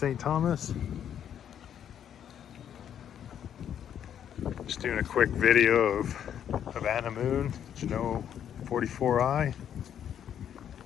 Thomas. Just doing a quick video of Anna Moon, Jeanneau 44i.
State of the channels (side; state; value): right; quieter; 9.4 dB